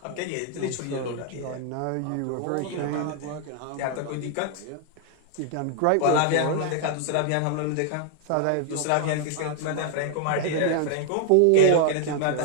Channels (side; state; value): both; different; correlation 0.00